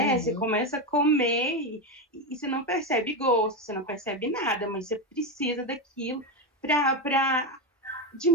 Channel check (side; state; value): both; normal; correlation 0.12